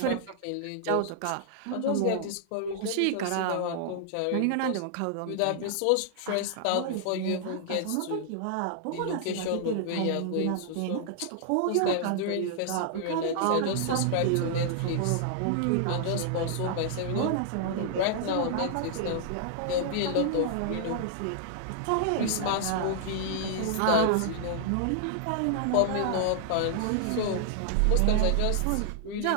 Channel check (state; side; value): different; both; correlation 0.00